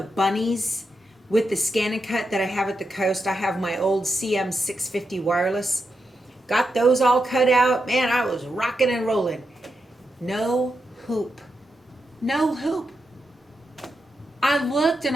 bunnies with the scan and cut that I have at the coast. I have my old CM650 wireless. Got those all cut out. Man, I was rocking and rolling. No hoop. No hoop. I looked and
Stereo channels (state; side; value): normal; both; correlation 0.86